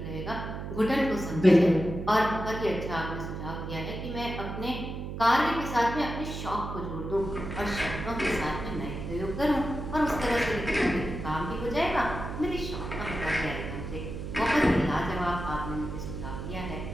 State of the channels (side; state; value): right; noise; hum, 6 dB below the sound